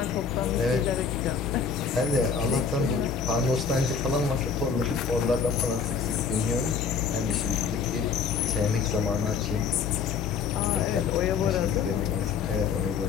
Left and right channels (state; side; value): quieter; right; 6.0 dB